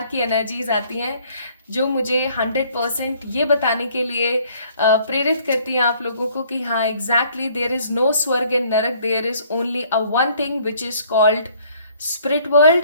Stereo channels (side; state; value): both; inverted; correlation -0.60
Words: की एनर्जीज आती हैं। जो मुझे 100% ये बताने के लिए प्रेरित करती हैं आप लोगों को कि हाँ एग्जैक्टली देयर इज नो स्वर्ग एंड नरक, there is only a one thing which is called spirit